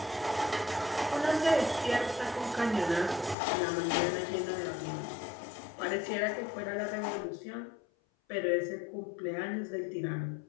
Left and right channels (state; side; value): drops out; right; at 3.4 s